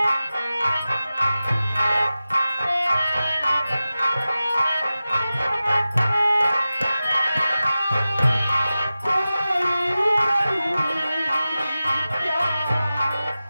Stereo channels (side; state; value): both; inverted; correlation -0.95